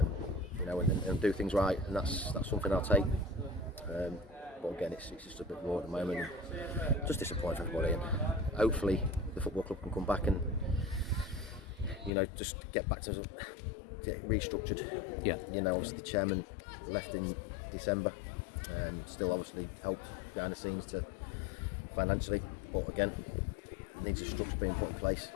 you know, and do things right, and that's something I'll take. But again, it's just a bit raw at the moment, and just disappointing for everybody, and hopefully the football club can come back and, you know, just get back to get restructured. Yeah. You know, obviously the chairman left in December, still obviously helped behind the scenes to financially, but again, it needs a structure being put in place.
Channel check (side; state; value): right; drops out; at 12.1 s